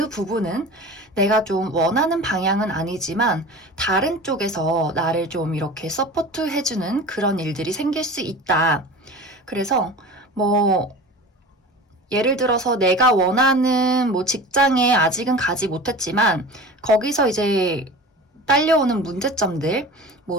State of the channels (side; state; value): both; normal; correlation 0.36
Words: 부분은 내가 좀 원하는 방향은 아니지만 다른 쪽에서 나를 좀 이렇게 서포트 해주는 그런 일들이 생길 수 있다. 그래서 예를 들어서 내가 원하는 직장에 아직은 가지 못했지만 거기서 이제 딸려오는 문제점들,